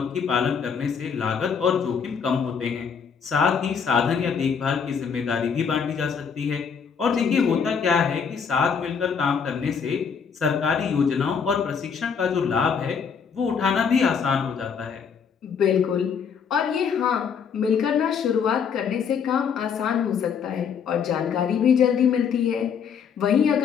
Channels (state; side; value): quieter; right; 6.6 dB